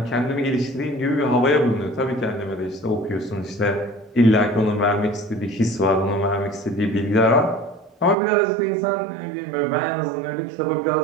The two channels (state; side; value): drops out; left; at 8.2 s